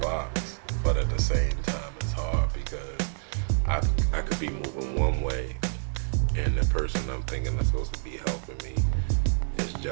But at the same time, it's hard because I could be moving one way, and the person I'm thinking that's supposed to be helping me is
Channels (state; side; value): silent; left; digital silence